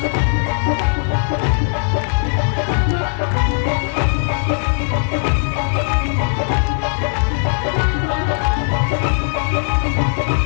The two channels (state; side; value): silent; right; 61 dB below the other